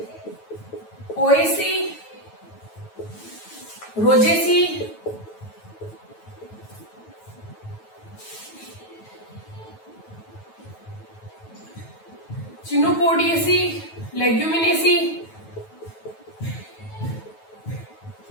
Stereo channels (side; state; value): right; late; 9.2 ms